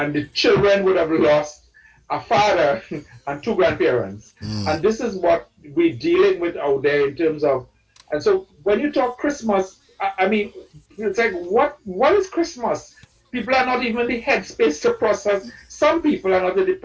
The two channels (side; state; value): both; identical; correlation 1.00